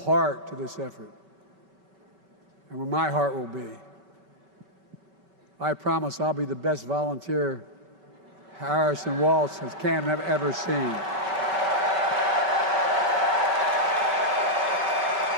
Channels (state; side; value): late; left; 5.3 ms